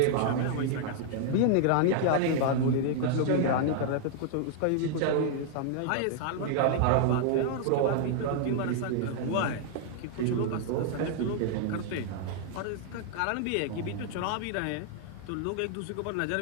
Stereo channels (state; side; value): different; both; correlation -0.01